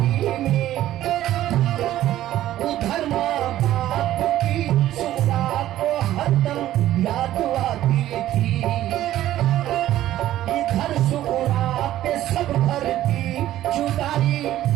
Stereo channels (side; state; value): left; quieter; 13.5 dB